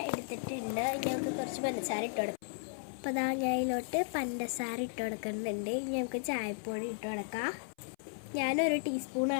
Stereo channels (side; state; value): right; silent; 54 dB below the other